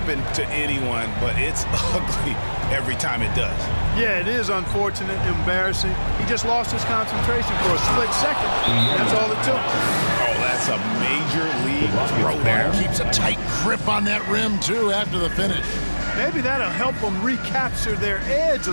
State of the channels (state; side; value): inverted; both; correlation -1.00